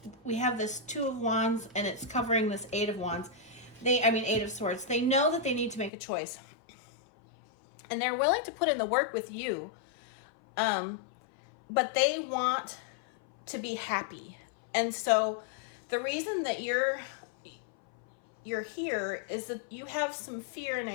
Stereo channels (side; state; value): right; drops out; at 5.9 s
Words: Two of Wands, and it's covering this Eight of Wands. Eight of Swords. They know that they need to make a choice, and they're willing to put in the work with you, but they want to be happy. And so the reason that you're here is that you have some fear and